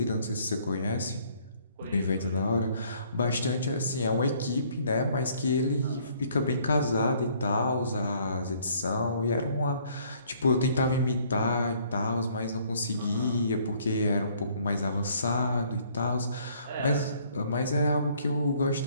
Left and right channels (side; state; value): both; inverted; correlation -0.62